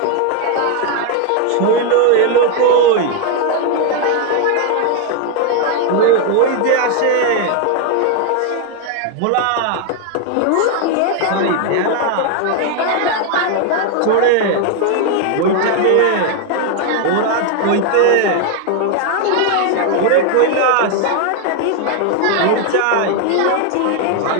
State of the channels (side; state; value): both; different; correlation 0.01